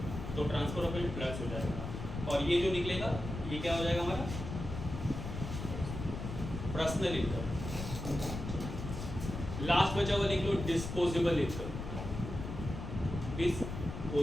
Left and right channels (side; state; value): left; noise; rumble, 6 dB below the sound